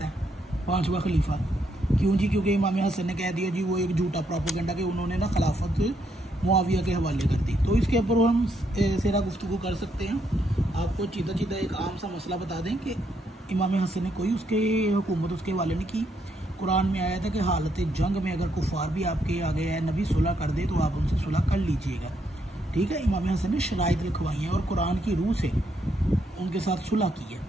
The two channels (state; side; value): normal; both; correlation 0.76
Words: है 5वां खलीफा। क्यों जी? क्योंकि इमाम हसन ने कह दिया जी, वो एक झूठा प्रोपेगेंडा कि उन्होंने ना खिलाफत मुआविया के हवाले कर दी। तो इसके ऊपर हम सेरा गुफ्तगू कर सकते हैं। आपको सीधा एक आम सा मसला बता दें कि इमाम हसन ने कोई उसके हुकूमत उसके हवाले नहीं की। कुरान में आया था कि हालत जंग में अगर कुफार भी आपके आ गया है, नबी सुलह कर दे तो आप उनसे सुलह कर लीजिएगा, ठीक है। इमाम हसन ने शराइत लिखवाई हैं और कुरान की रूह से उनके साथ सुलह की है,